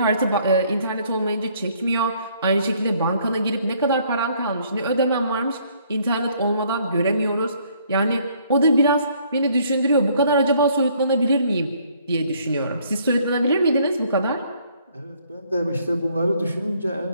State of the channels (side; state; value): both; inverted; correlation -0.64